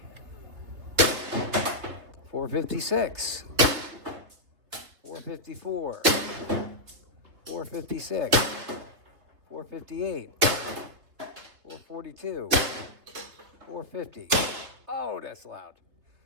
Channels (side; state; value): left; late; 3.3 ms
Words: 456. 454. 456. 458. 442. 450. Oh, that's loud.